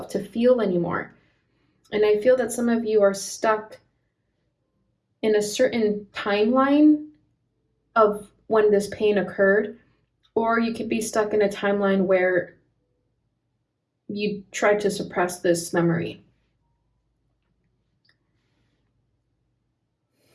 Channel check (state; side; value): identical; both; correlation 1.00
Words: to feel anymore. And I feel that some of you are stuck in a certain timeline of when this pain occurred, or you could be stuck in a timeline where you tried to suppress this memory.